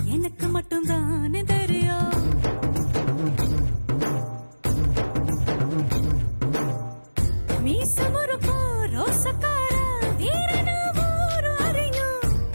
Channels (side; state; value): both; inverted; correlation -1.00